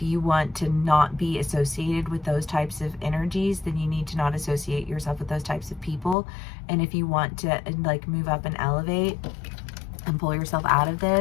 you want to not be associated with those types of energies, then you need to not associate yourself with those types of people. And if you want to like move up and elevate and pull yourself out of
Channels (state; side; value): drops out; right; at 6.2 s